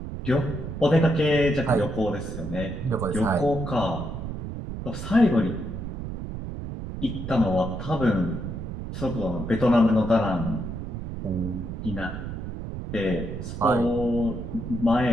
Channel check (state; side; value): noise; right; rumble, 7 dB below the sound